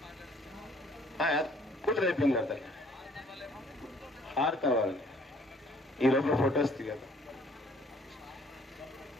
కూతురు అయిపోయింది కదా హారతి అవ్వాలి ఈ లోపల ఫొటోస్ దిగదు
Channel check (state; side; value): normal; both; correlation 0.60